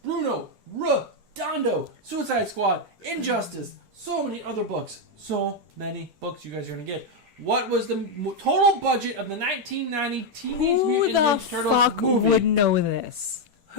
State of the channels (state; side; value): late; left; 10 ms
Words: Redondo, Suicide Squad, Injustice, so many other books. So many books you guys are going to get. What was the total budget of the 1990 Teenage Who Mutant the Ninja Turtles fuck movie? would know this?